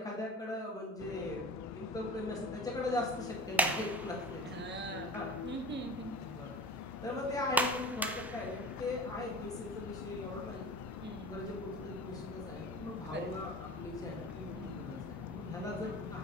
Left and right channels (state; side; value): normal; both; correlation 0.37